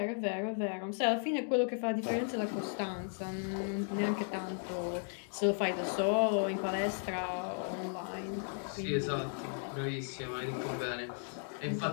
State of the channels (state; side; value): silent; right; 54 dB below the other